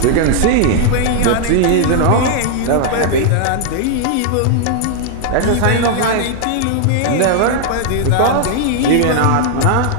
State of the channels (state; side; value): different; both; correlation -0.01